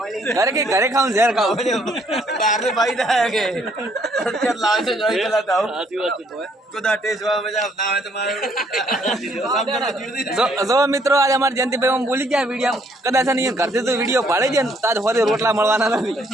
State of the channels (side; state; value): both; normal; correlation 0.67